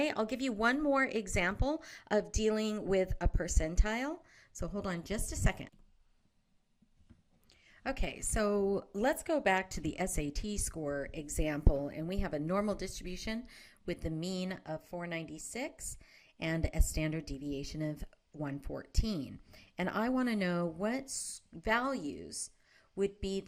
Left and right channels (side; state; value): both; identical; correlation 1.00